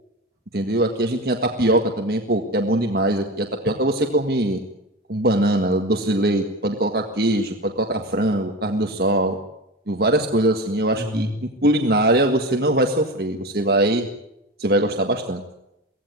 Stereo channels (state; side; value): normal; both; correlation 0.26